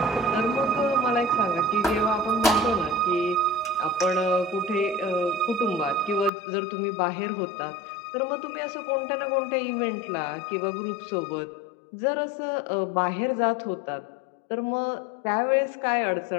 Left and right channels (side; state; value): right; drops out; at 6.3 s